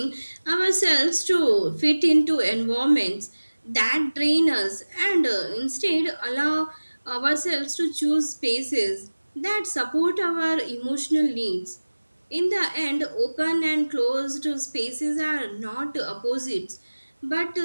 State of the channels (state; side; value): inverted; both; correlation -1.00